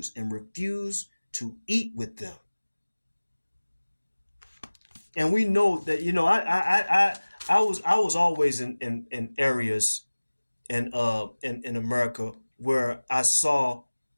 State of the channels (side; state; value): both; inverted; correlation -1.00